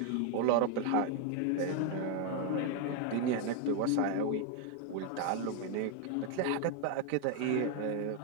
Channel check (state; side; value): different; both; correlation 0.01